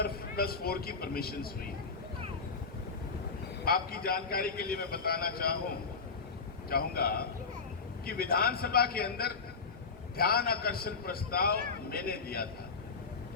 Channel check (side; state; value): right; quieter; 4.8 dB